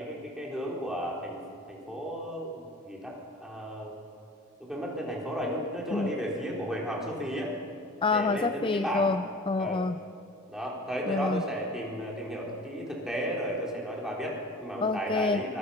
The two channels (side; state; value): both; normal; correlation 0.41